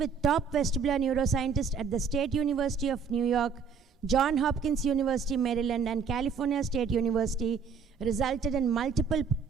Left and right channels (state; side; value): quieter; left; 6.0 dB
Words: top vestibular neuroscientists at the State University of New York, Johns Hopkins University, Maryland, and California State University resulted in multiple